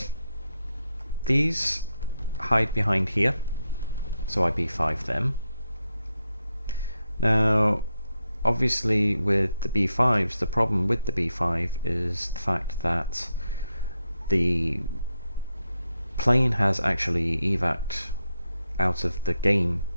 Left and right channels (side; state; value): both; inverted; correlation -0.83